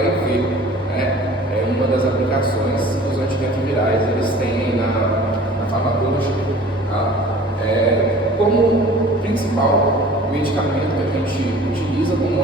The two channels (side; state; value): both; normal; correlation 0.46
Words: É uma das aplicações que os antirretrovirais eles têm na farmacologia. Tá? Como principal medicamento que a gente utiliza como